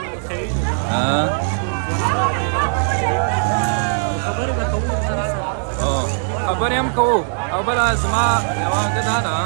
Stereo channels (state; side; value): silent; left; 66 dB below the other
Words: ښیي خبرې به کوو سره خبرې هم کوو او بله زما یوه ګه دا ده